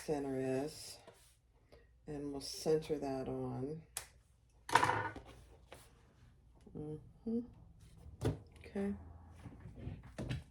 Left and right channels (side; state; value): both; identical; correlation 1.00